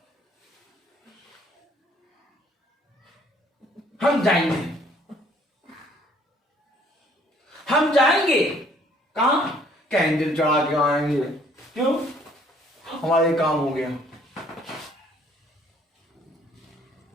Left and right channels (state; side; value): normal; both; correlation 0.61